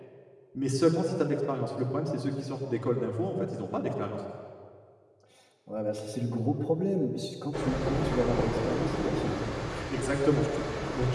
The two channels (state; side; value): identical; both; correlation 1.00